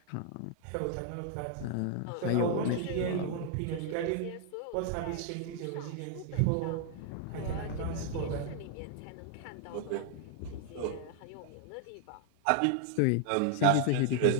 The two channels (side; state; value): both; different; correlation 0.00